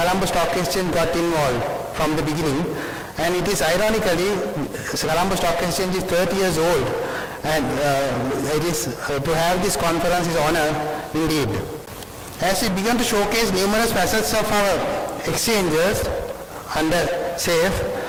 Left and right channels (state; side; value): identical; both; correlation 1.00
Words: Stock Exchange got involved from the beginning, and it is ironically Colombo Stock Exchange is 30 years old, and it is to have this conference is honor indeed. As we began to showcase numerous facets of our exchanges under SAFE